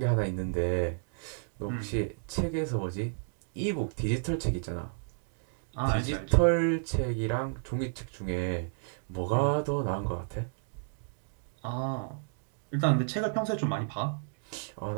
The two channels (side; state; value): left; silent; digital silence